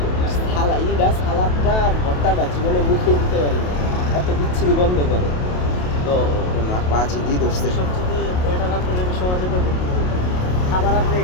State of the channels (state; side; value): late; right; 28 ms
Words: সালাদটা আর ভর্তাটা জীবনে মুখেই দিতে পারি না, এত বিচ্ছিরি গন্ধ করে। তো মা পাঁচই দিয়ে ধরছে। সবচেয়ে বেটার আপনাকে আমি সহজে করবো, খাবার আপনি